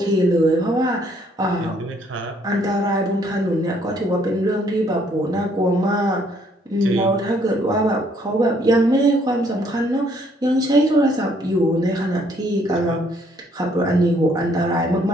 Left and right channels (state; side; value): normal; both; correlation 0.66